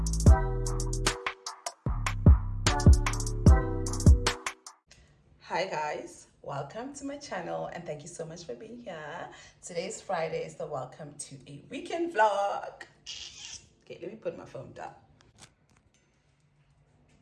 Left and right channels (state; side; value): identical; both; correlation 1.00